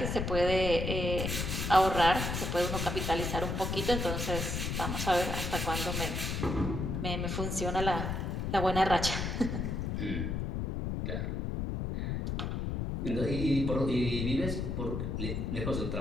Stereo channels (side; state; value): left; noise; rumble, 2 dB below the sound